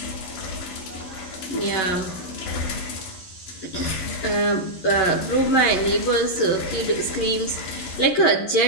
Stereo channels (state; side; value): late; right; 11 ms